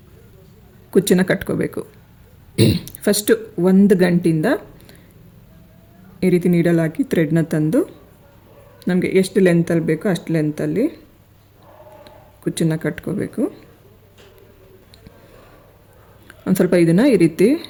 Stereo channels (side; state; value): both; identical; correlation 1.00